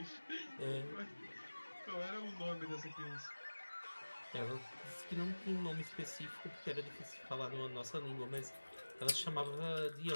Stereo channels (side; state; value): both; inverted; correlation -1.00